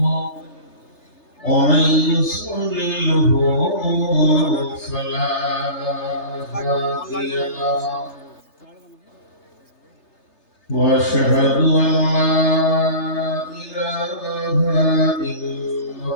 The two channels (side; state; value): right; late; 3.3 ms